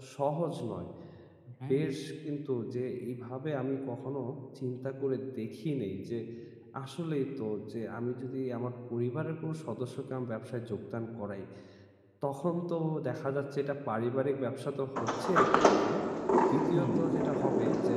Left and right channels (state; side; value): identical; both; correlation 1.00